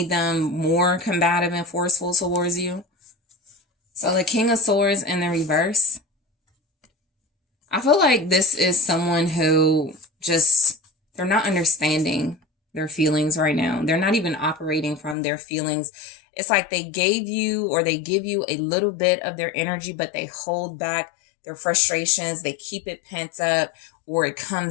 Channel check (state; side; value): drops out; right; at 15.2 s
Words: them more combative and forceful towards you. So the King of Swords in the reverse. I feel like this is someone who they're not understanding their feelings right now. They're not even operating from their feelings. It's like they give you a little bit of their energy, but they hold back their frustrations. They keep it pent up, or it